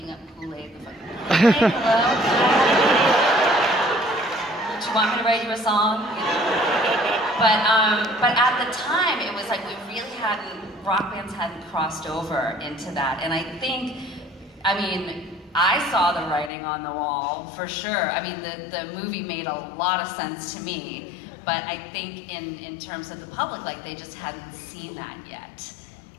up Kool-Aid, the fucking Kool-Aid, hello? Do you want me to write you a song? You know? But at the time, it was like rock bands hadn't crossed over into that. And I think, I mean, I saw the writing on the wall, for sure. I mean, the movie made a lot of sense to me, but I think in terms of the public, like, they just hadn't seen that yet.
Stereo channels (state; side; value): drops out; right; at 16.5 s